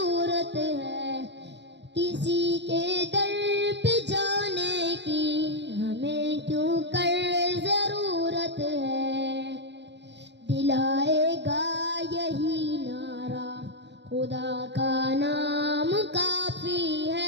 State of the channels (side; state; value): left; late; 0.51 ms